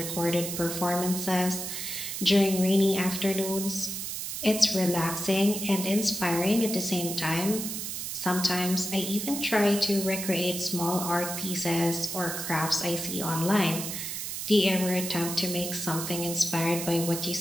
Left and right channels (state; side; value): noise; right; hiss, 5 dB below the sound